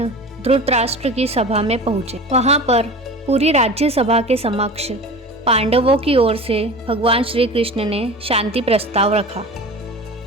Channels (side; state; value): both; normal; correlation 0.35